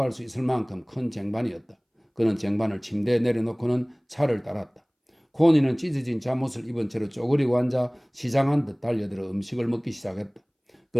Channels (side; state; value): both; identical; correlation 1.00